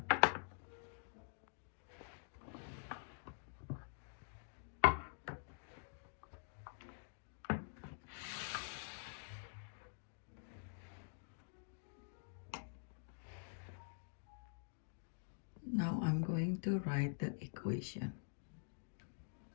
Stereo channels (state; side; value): silent; right; digital silence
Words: Now I'm going to write the equation.